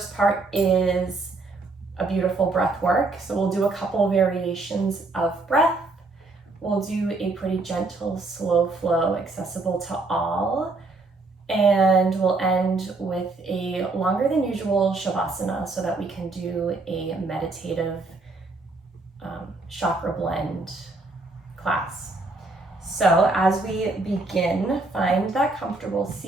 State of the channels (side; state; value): left; quieter; 3.4 dB